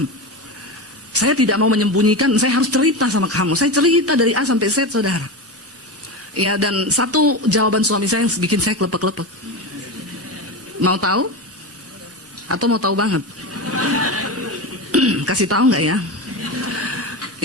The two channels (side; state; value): both; normal; correlation 0.20